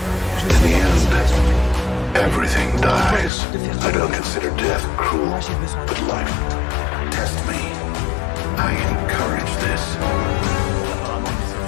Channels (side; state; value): right; drops out; at 3.3 s